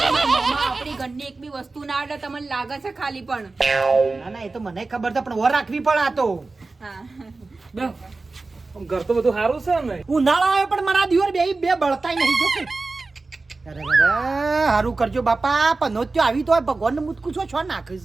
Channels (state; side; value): quieter; left; 3.6 dB